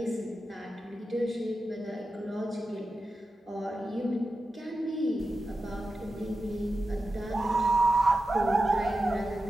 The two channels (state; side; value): normal; both; correlation 0.92